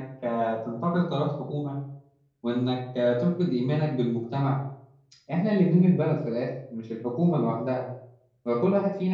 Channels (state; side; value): identical; both; correlation 1.00